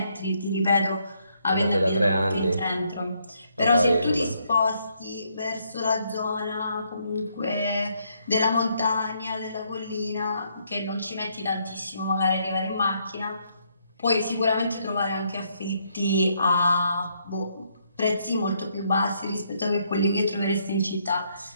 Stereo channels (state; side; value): inverted; both; correlation -0.73